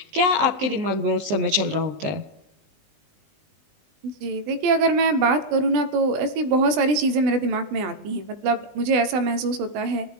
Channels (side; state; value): left; late; 20 ms